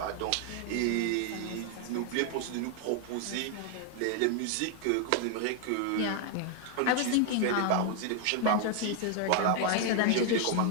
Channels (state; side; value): different; both; correlation 0.00